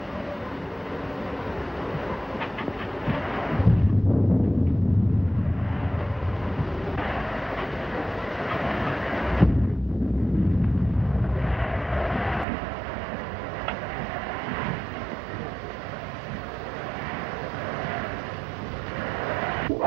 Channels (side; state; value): left; drops out; at 12.5 s